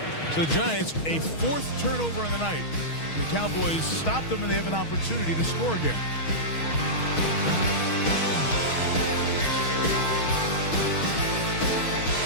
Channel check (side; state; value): right; late; 6.3 ms